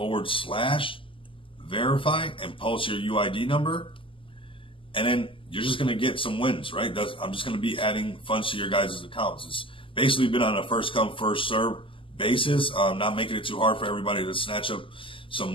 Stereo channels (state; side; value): late; right; 0.25 ms